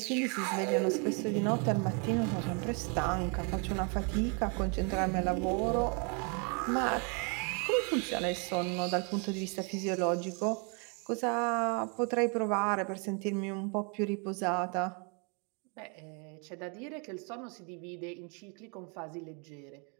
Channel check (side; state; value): left; quieter; 36.0 dB